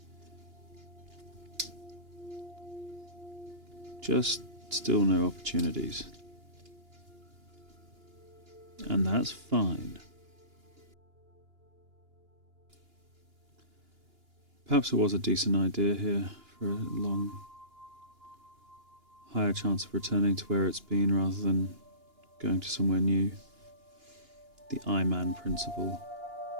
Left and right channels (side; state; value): left; late; 2.9 ms